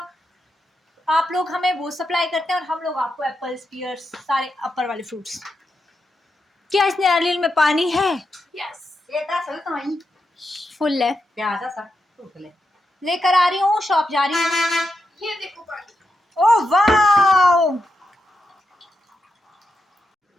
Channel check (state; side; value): normal; both; correlation 0.85